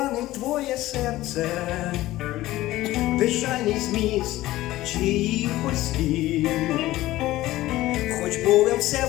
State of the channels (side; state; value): right; quieter; 16.4 dB